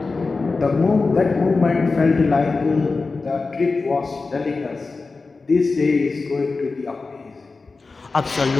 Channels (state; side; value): quieter; right; 4.0 dB